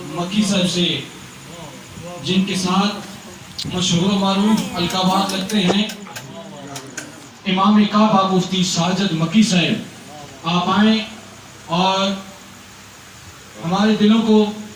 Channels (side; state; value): both; identical; correlation 1.00